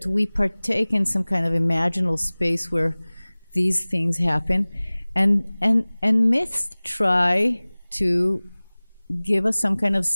we partake in some kind of imaginal space where these things happen, and myths try to give us some kind of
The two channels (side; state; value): both; inverted; correlation -1.00